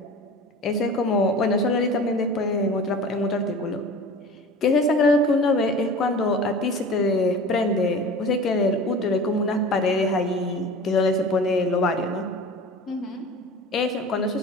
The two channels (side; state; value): both; normal; correlation 0.37